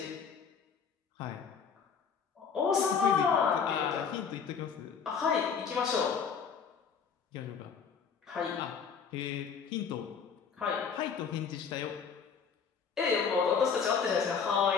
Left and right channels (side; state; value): right; quieter; 6.4 dB